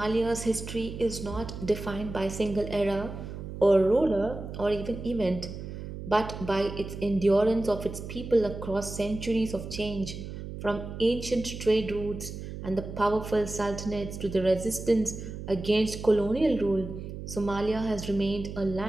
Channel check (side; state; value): right; noise; hum, 9 dB below the sound